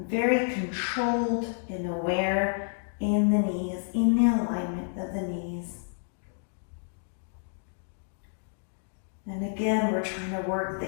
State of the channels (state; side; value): silent; right; digital silence